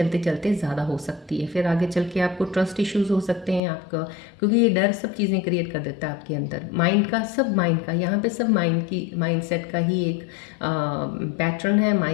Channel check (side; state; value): right; drops out; at 3.6 s